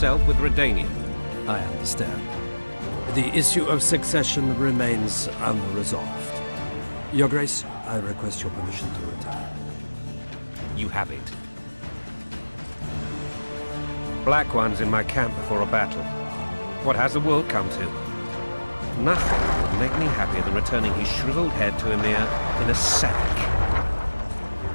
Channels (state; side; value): inverted; both; correlation -1.00